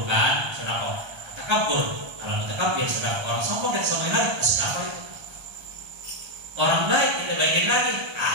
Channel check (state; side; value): late; left; 1.3 ms